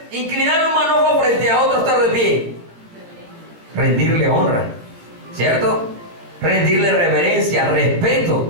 inclinar un manojo frente a otro estar de pie? Rendirle honra, ¿cierto? Rendirle reverencia,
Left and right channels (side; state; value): left; late; 17 ms